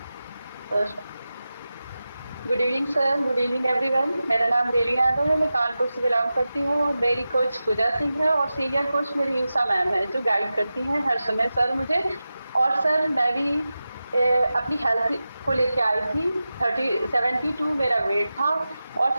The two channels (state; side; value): inverted; both; correlation -0.93